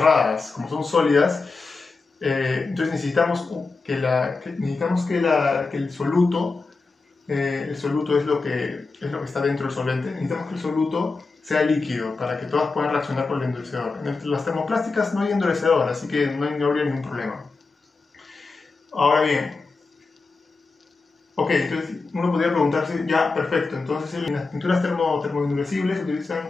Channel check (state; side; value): quieter; right; 4.0 dB